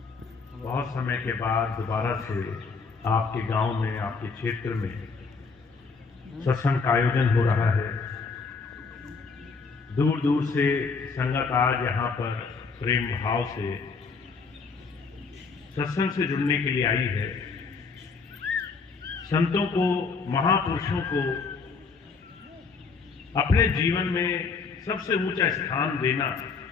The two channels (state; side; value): quieter; right; 4.8 dB